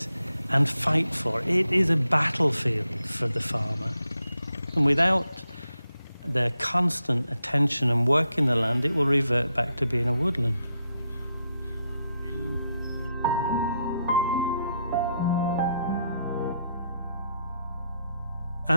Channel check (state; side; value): inverted; both; correlation -0.80